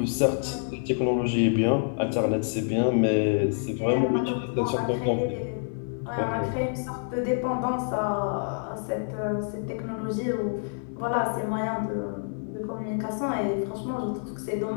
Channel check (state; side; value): silent; right; 60 dB below the other